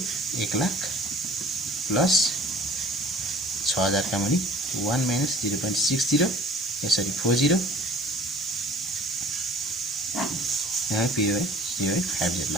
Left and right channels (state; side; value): normal; both; correlation 0.49